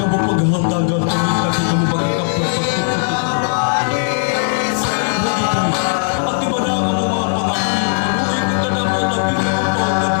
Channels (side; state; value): right; silent; digital silence